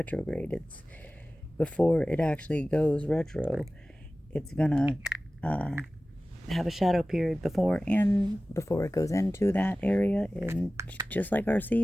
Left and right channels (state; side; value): normal; both; correlation 0.97